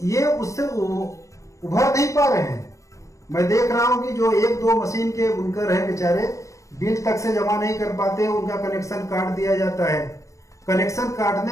ये उससे उभर नहीं पा रहे हैं। मैं देख रहा हूं कि जो 1-2 मशीन के बुनकर हैं बेचारे, बिल तक से जमा नहीं कर पाते, उनका कनेक्शन काट दिया जाता है। कनेक्शन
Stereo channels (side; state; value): right; late; 0.15 ms